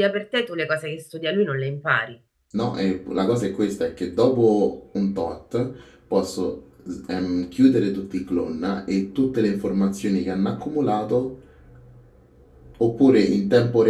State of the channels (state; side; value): identical; both; correlation 1.00